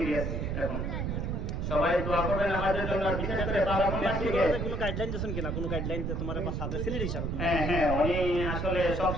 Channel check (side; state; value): right; noise; rumble, 1 dB below the sound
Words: এখন। সবাই দোয়া করবেন আমাদের জন্য, বিশেষ করে কোনো গাইডলাইন দিয়েছেন কিনা, কোনো গাইডলাইন তোমার সাথে সিলেট হিসাবে? হ্যাঁ, উনি আসলে